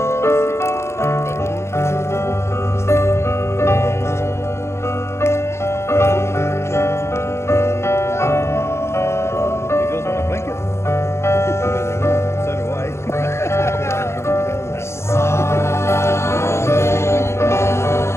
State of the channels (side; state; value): right; late; 0.13 ms